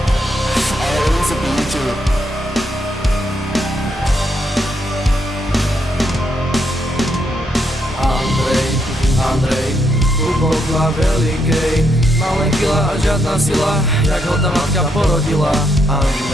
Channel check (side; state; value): both; normal; correlation 0.77